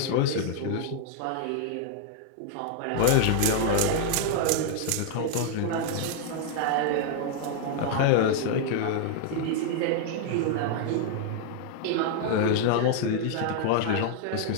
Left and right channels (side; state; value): both; different; correlation 0.00